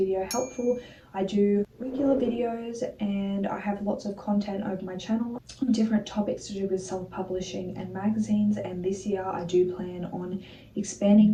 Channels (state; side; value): identical; both; correlation 1.00